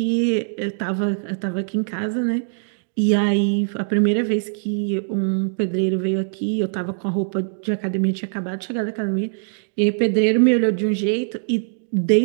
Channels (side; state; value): left; silent; digital silence